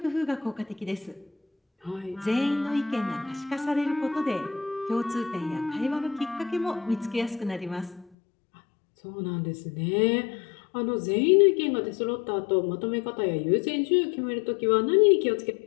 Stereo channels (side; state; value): right; drops out; at 8.1 s